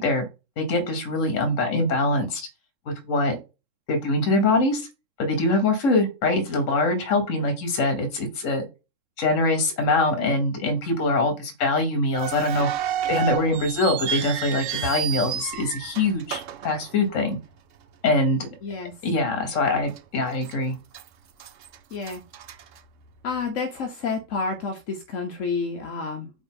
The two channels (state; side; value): late; right; 3.7 ms